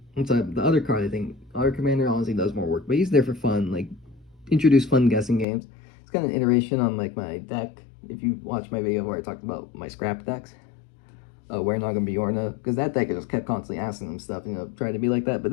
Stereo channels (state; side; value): drops out; right; at 5.5 s